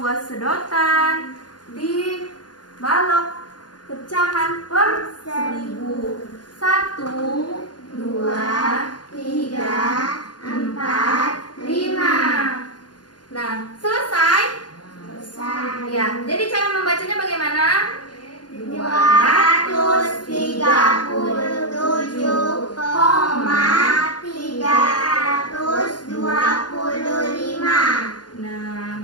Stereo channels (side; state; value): right; late; 0.70 ms